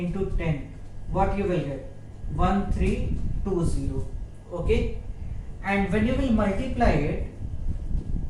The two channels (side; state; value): both; identical; correlation 1.00